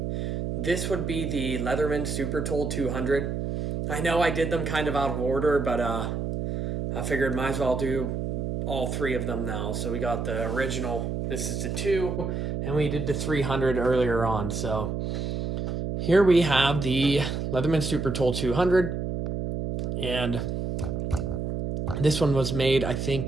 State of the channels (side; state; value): right; noise; hum, 3 dB below the sound